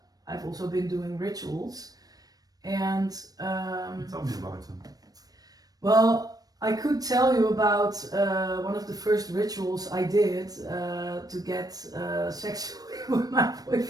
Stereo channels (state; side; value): late; left; 0.18 ms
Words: I've also been doing rituals, and tell me about them. Well, I could tell you about one of the first rituals I did to get sexually with my